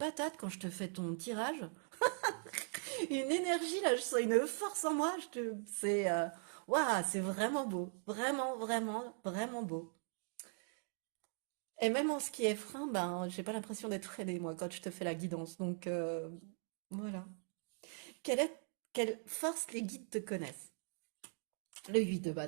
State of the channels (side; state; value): left; silent; 51 dB below the other